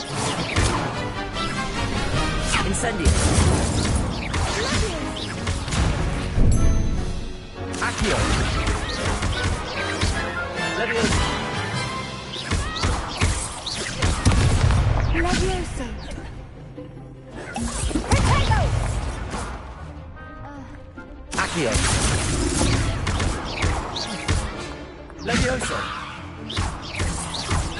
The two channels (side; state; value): both; identical; correlation 1.00